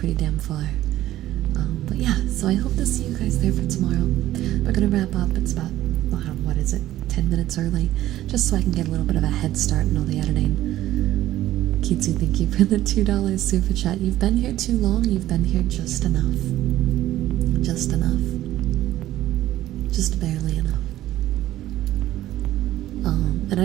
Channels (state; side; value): quieter; left; 14.2 dB